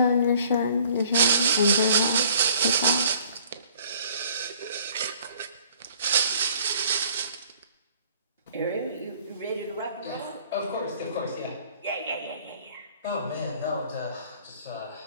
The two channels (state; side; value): inverted; both; correlation -0.56